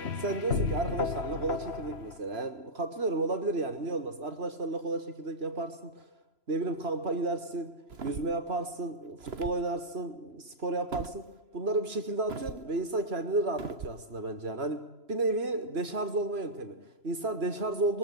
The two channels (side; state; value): left; late; 3.0 ms